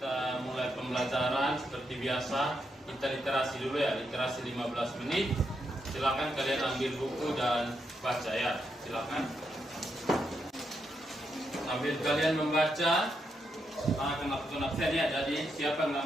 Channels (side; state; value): both; normal; correlation 0.81